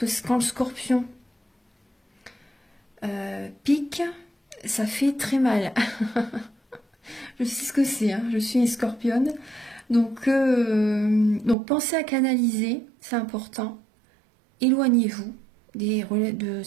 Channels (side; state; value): left; drops out; at 11.6 s